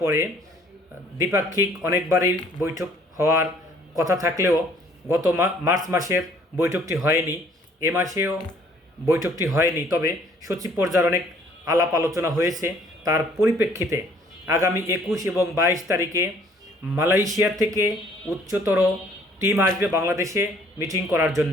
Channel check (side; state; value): both; normal; correlation 0.59